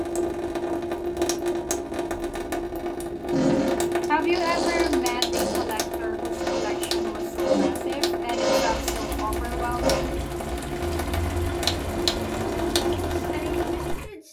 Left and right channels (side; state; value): both; identical; correlation 1.00